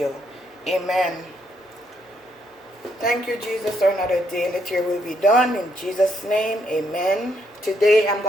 Amen. Thank you, Jesus, for another day. Let your will be done. In Jesus' name, amen. Today I'm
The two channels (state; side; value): normal; both; correlation 0.74